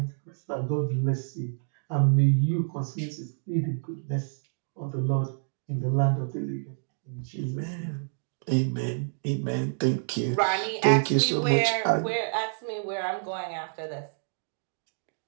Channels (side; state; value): left; silent; digital silence